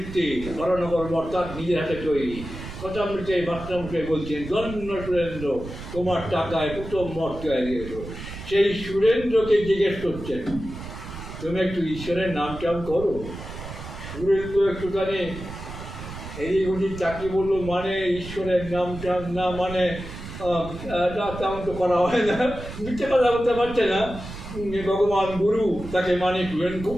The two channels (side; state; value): right; noise; rumble, 11 dB below the sound